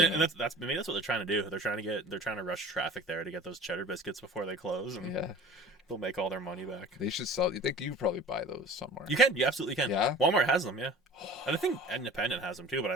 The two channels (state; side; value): normal; both; correlation 0.41